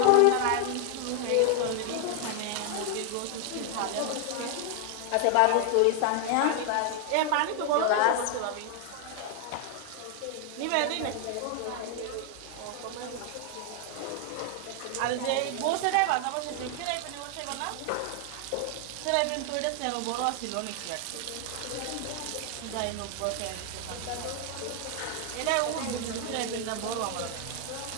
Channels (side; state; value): both; different; correlation 0.00